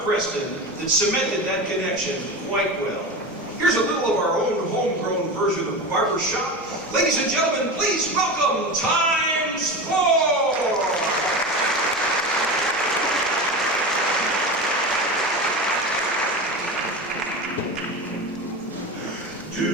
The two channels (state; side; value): normal; both; correlation 0.26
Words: Preston that cemented that connection quite well. Here's a little of our own homegrown version of Barber Shop. Ladies and gentlemen, please welcome Times 4!